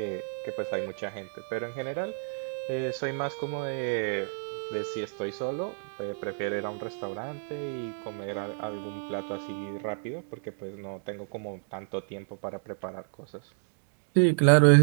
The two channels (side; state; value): left; silent; digital silence